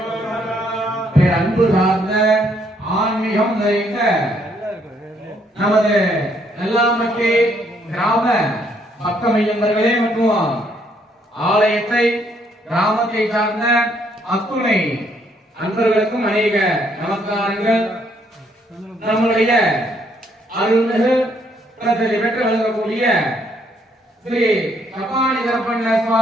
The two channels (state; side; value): normal; both; correlation 0.70